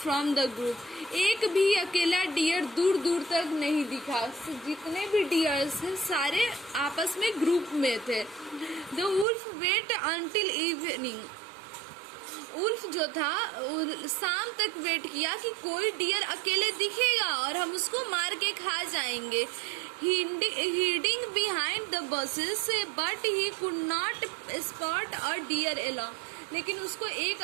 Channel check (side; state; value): left; drops out; at 9.2 s